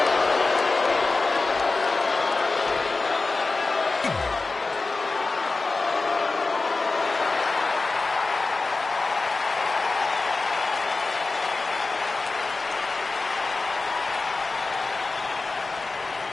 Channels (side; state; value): right; quieter; 3.7 dB